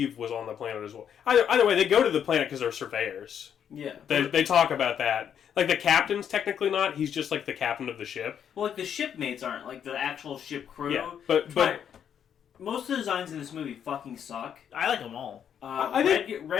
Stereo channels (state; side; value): quieter; right; 8.6 dB